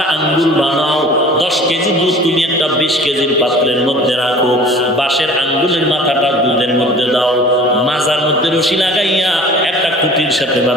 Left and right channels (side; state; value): both; normal; correlation 0.45